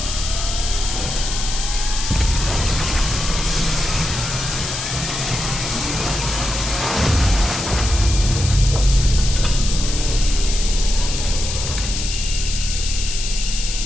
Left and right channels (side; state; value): left; noise; hiss, 5 dB below the sound